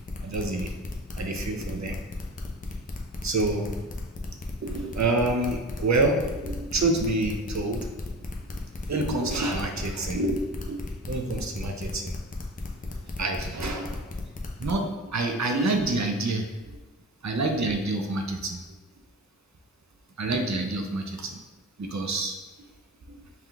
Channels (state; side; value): normal; both; correlation 0.32